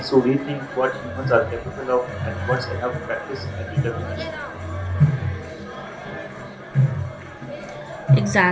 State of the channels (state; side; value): identical; both; correlation 1.00